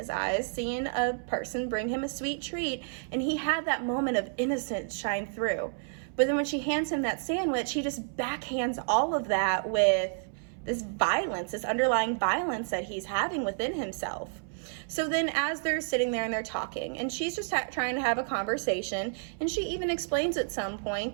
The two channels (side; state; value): left; silent; 58 dB below the other